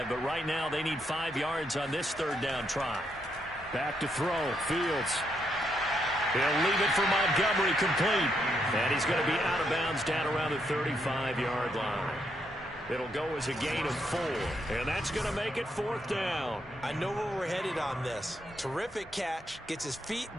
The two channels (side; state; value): both; normal; correlation 0.77